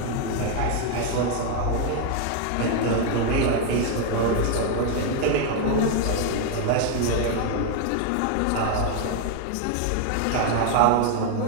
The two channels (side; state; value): both; different; correlation 0.01